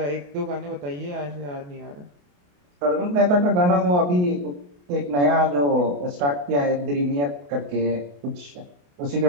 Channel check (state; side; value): late; left; 28 ms